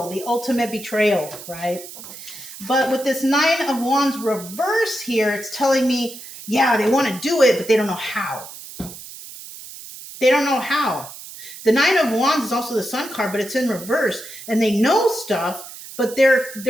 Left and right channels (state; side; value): noise; right; hiss, 14 dB below the sound